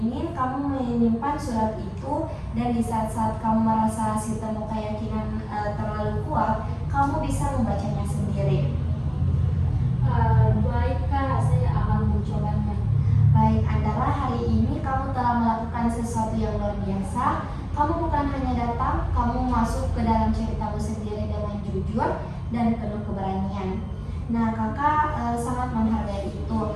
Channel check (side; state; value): both; identical; correlation 1.00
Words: kamu menyimpan surat itu, dan di saat-saat kamu merasa sistem keyakinan terlalu kuat, kamu bisa membacanya sendiri. Baik Kak, saya akan mencobanya. Baik Andara, hari ini kamu telah melakukan sesuatu yang luar biasa. Kamu bukan hanya datang, kamu masuk ke dalam ceritamu sendiri dengan jujur dan penuh keberanian. Nah, kakak sangat menghargai itu.